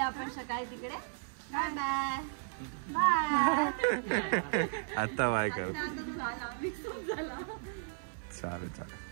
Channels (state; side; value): silent; left; 55 dB below the other